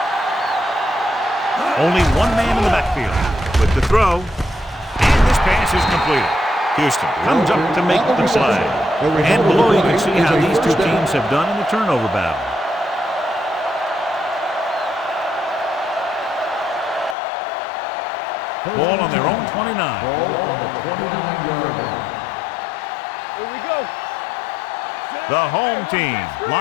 Only one man in the backfield with the throw. And this pass is completed. Houston comes up to make the play. And below you can see how these two teams have done in the turnover battle. Ball on their own 29. Ball on the 29-yard line. Here we go. The home team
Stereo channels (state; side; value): drops out; right; at 17.2 s